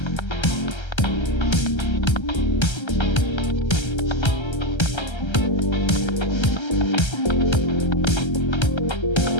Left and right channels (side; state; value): right; late; 1.3 ms